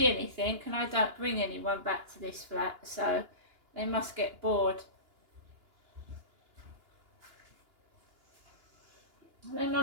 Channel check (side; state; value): left; late; 2.9 ms